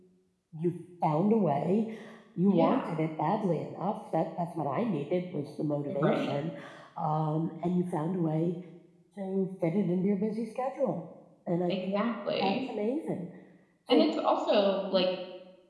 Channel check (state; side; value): identical; both; correlation 1.00